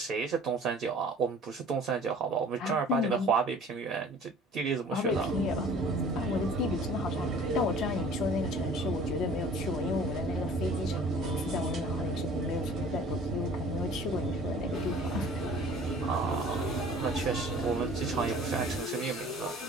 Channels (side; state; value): both; normal; correlation 0.48